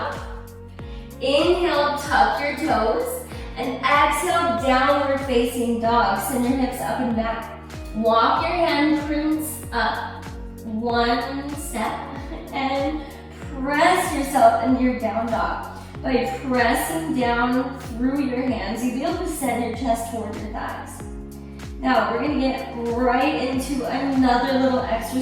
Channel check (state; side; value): identical; both; correlation 1.00